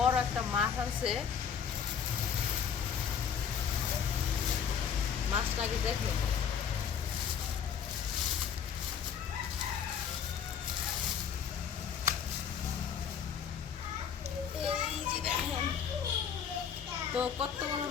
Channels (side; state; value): right; quieter; 7.5 dB